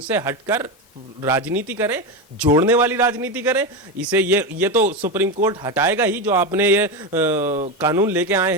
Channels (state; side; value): normal; both; correlation 0.15